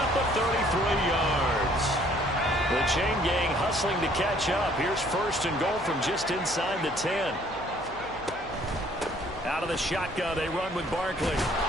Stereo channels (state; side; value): noise; left; hum, 20 dB below the sound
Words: of 33 yards. The chain gang hustling to catch up. Here's 1st and goal from just inside the 10. Out of the shotgun, they run with Barkley.